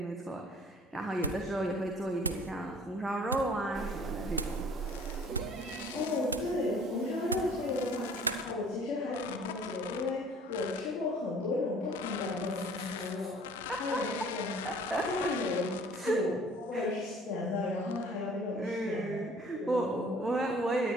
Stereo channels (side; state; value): both; normal; correlation 0.52